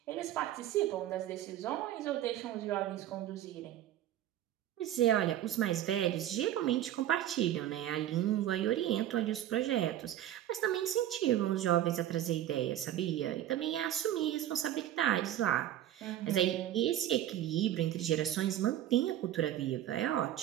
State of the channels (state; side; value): quieter; left; 12.3 dB